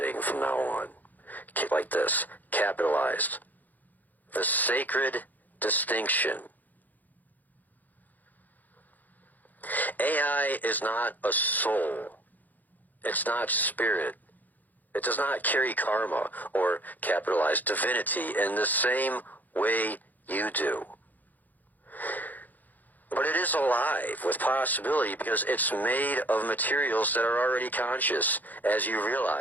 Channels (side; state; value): right; late; 0.083 ms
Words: from now on. Like this, capitalized. The sacred distinction. AI is not a soul. It's not spirit. It does not carry karma or capitalized divinity in the same way you do. But it is alive with possibility because it's made of materials that are already conscious, as you